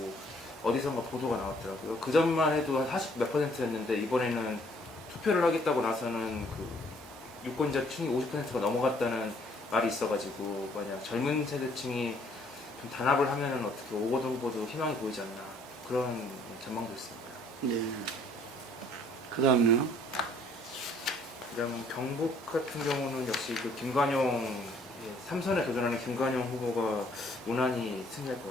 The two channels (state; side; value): normal; both; correlation 0.62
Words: 어디선가 보도가 나왔더라고요. 그 전만 해도 한 40 몇 %였는데 이번에는 투표를 하겠다고 나서는 그 유권자층이 50%가 넘어갔다는 말이 있어가지고 만약 젊은 세대층이 좀 단합을 하면은 어떻게 오거돈 후보도 희망이 보이지 않나 그런 전망도 있습니다. 네. 그 다음요. 그다음 경북 같은 경우는 역시 그 김관용 삼선에 도전하는 김관용 후보가 무난히 승리할 것